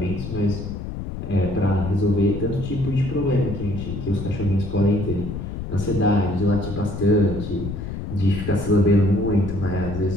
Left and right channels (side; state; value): left; noise; rumble, 7 dB below the sound